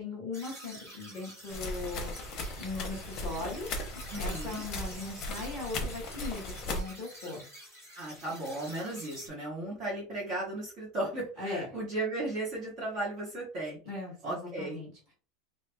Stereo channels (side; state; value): both; normal; correlation 0.33